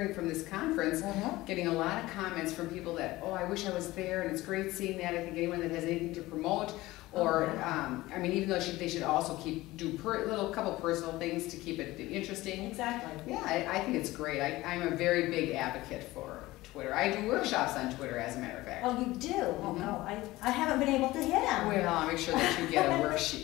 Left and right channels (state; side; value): quieter; right; 18.5 dB